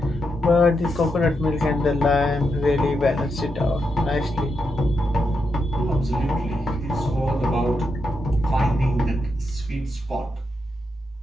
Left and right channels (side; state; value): both; normal; correlation 0.84